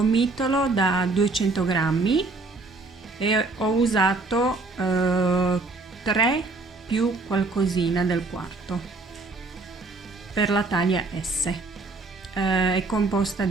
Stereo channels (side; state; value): left; quieter; 3.6 dB